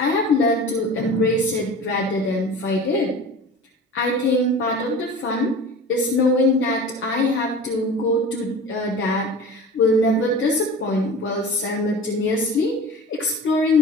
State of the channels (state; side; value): normal; both; correlation 0.37